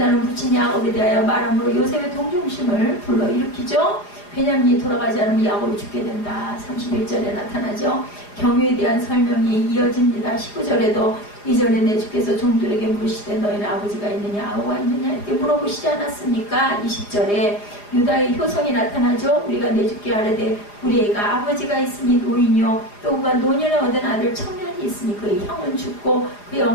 부친 야곱에 대하여 말함으로 요셉의 동정심을 불러일으키죠. 베냐민이 돌아가지 않으면 야곱이 죽게 된다. 31절에 나타나죠. 경유에 대한 설명이 이어집니다. 19절에도 이전에 내 주께서 종들에게 물으시되 너희는 아버지가 있느냐 아우가 있느냐 이렇게 물어보시지 않았습니까? 20절에 유다의 효성이 나타나죠. 우리가 내 주께 아뢰되 우리 애가 아버지가 있으니 노인이요 또 그가 노년에 얻은 아들 청년이 있으니 그의 형은 죽고 그의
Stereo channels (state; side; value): late; right; 4.9 ms